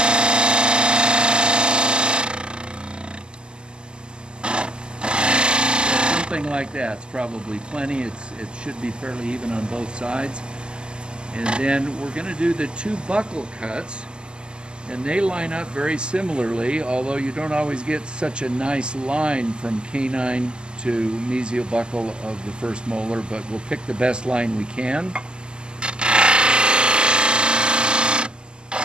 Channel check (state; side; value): late; left; 0.048 ms